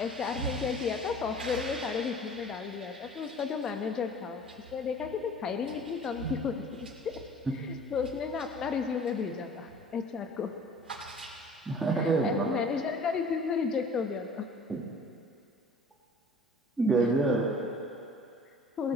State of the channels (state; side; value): normal; both; correlation 0.47